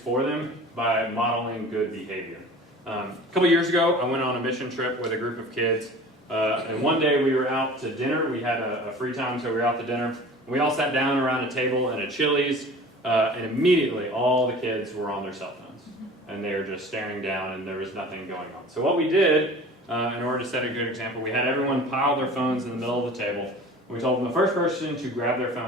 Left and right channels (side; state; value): both; normal; correlation 0.42